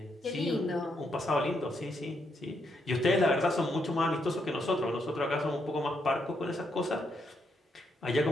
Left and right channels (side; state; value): both; normal; correlation 0.78